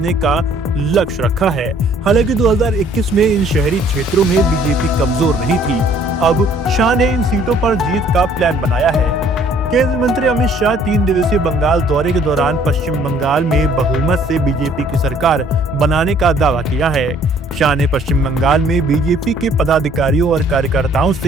का लक्ष्य रखा है। हालांकि 2021 में इन शहरी क्षेत्रों में बीजेपी कमजोर नहीं थी। अब शाह ने इन सीटों पर जीत का प्लान बनाया है। केंद्रीय मंत्री अमित शाह 3 दिवसीय बंगाल दौरे के दौरान पश्चिम बंगाल में बहुमत से बीजेपी की सरकार बनाने का दावा किया है। शाह ने पश्चिम बंगाल में बीजेपी के पदाधिकारियों और कार्यकर्ताओं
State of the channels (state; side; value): normal; both; correlation 0.59